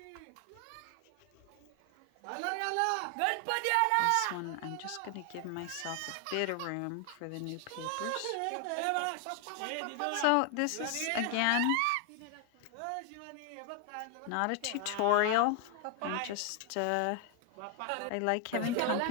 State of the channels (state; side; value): different; both; correlation 0.00